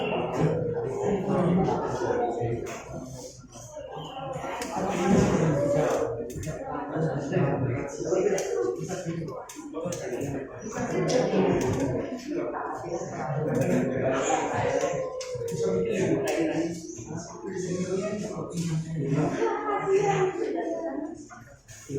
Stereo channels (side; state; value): both; identical; correlation 1.00